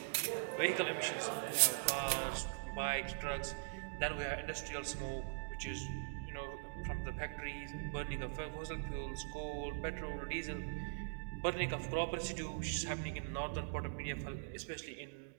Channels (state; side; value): silent; left; digital silence